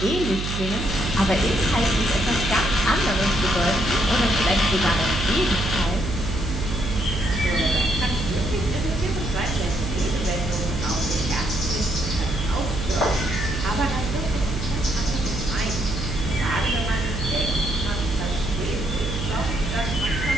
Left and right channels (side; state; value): right; noise; hum, 4 dB below the sound